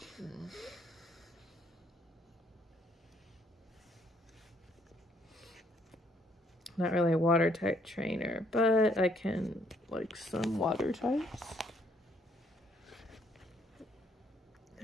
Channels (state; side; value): normal; both; correlation 0.67